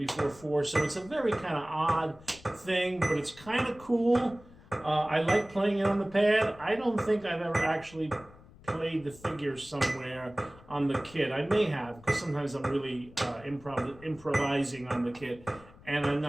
4. So it's a very kind of odd thing, but it's kind of cool. I like playing it on the pad. I don't think I've ever actually played the figures somewhere on the kit. I may have, because sometimes I'm really improvising on the kit, and I'm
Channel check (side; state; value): left; noise; rumble, 22 dB below the sound